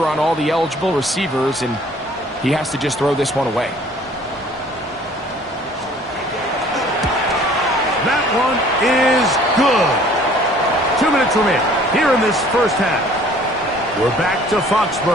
on all the eligible receivers, and he has to just throw this one away. That one is good. 2 minutes remain here in this first half. We're back to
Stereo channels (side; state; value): both; normal; correlation 0.54